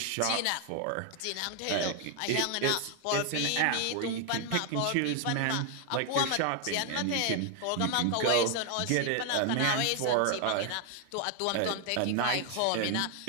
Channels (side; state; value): both; different; correlation 0.01